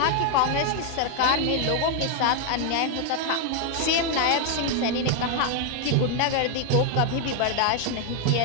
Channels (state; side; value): different; both; correlation 0.01